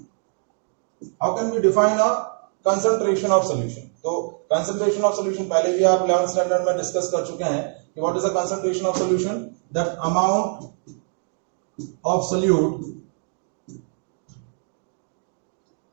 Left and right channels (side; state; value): left; silent; 56 dB below the other